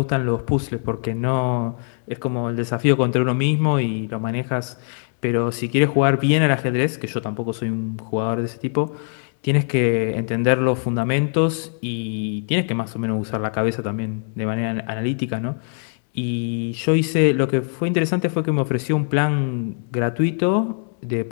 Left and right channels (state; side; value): silent; right; digital silence